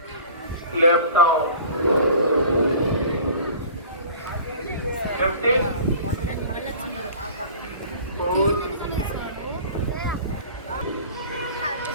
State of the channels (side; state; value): both; inverted; correlation -0.43